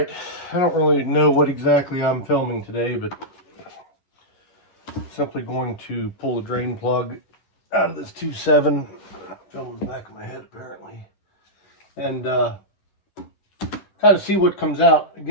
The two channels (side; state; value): right; late; 11 ms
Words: I don't really know what exactly I'm filming today, but simply going to pull the drain plug out of this 2.7. Filming the back of my head apparently, and kind of see what comes out.